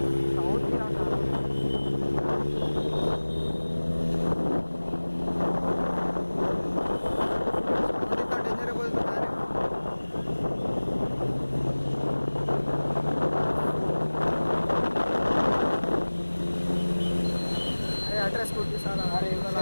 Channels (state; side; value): inverted; both; correlation -1.00